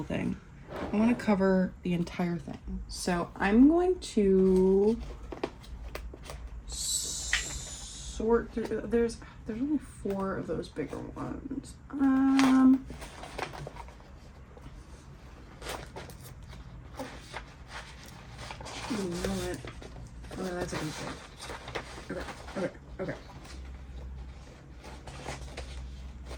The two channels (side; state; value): both; identical; correlation 1.00